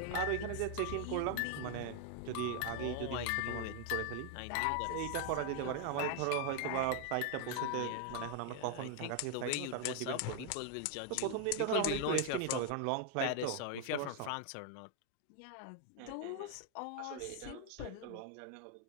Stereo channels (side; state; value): both; different; correlation 0.00